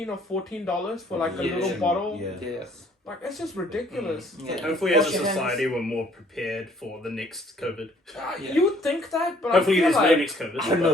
or $14 for like a Yeah. little bottle. Yeah. Yeah. Like it's just ridiculous. Yeah. Hopefully, as a Wash your hands. society, we're more prepared for the next COVID. Yeah. You would think that, but Hopefully, I there's feel no like next COVID. I don't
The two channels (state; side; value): normal; both; correlation 0.60